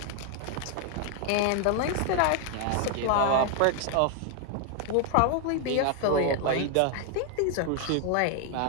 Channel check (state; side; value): different; both; correlation 0.00